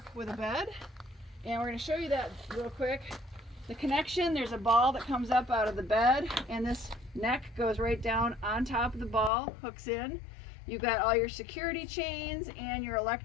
with a bed, and we're going to show you that real quick. The connection, there's a ball that comes up out of the bed, and this neck goes right down on top of the ball, hooks in. You've got all your security chains and your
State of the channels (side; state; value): right; drops out; at 9.3 s